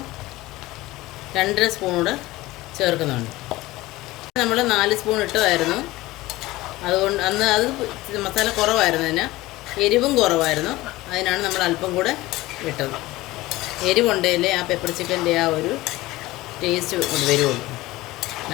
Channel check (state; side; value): quieter; right; 18.6 dB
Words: 2.5 സ്പൂൺ കൂടെ ചേർക്കുന്നുണ്ട്. നമ്മൾ 4 സ്പൂൺ ഇട്ടതായിരുന്നു, അതുകൊണ്ട് അന്ന് അത് മസാല കുറവായിരുന്നതിന്, എരിവും കുറവായിരുന്നു, അതിനാണ് നമ്മൾ അല്പം കൂടെ ഇട്ടത്. എരിവുണ്ടെങ്കിലേ ആ പെപ്പർ ചിക്കൻ്റെ ആ ഒരു ടേസ്റ്റ് കൊണ്ട് വരുള്ളൂ.